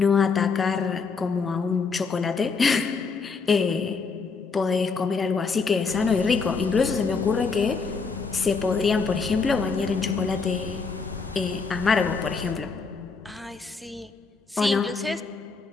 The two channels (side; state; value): right; quieter; 4.8 dB